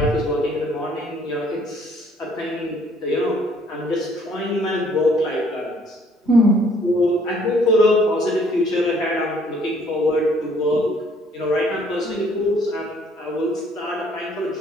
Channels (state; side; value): normal; both; correlation 0.62